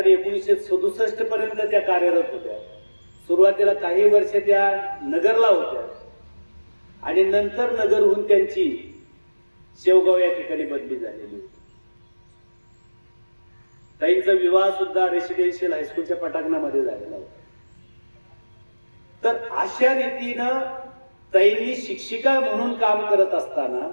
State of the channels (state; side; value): inverted; both; correlation -1.00